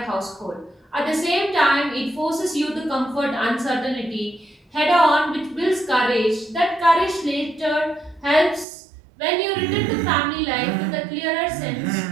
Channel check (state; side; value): drops out; left; at 8.7 s